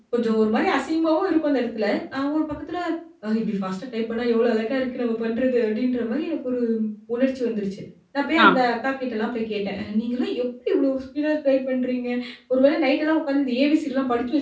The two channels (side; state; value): both; identical; correlation 1.00